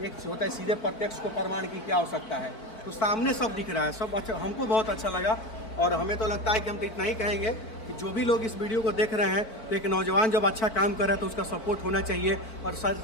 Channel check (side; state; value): right; late; 4.5 ms